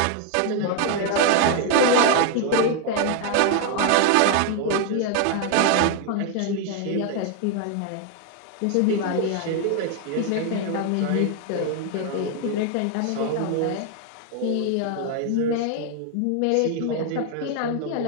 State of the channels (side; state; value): both; different; correlation 0.01